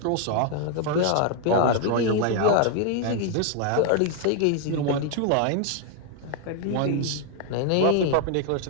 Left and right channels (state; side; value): different; both; correlation 0.00